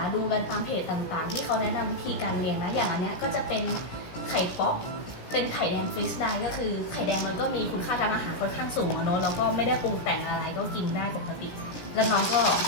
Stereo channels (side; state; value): right; late; 16 ms